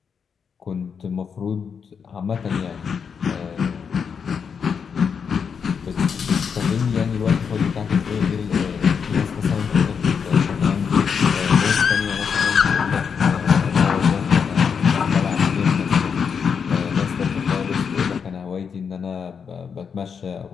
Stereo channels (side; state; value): right; quieter; 6.5 dB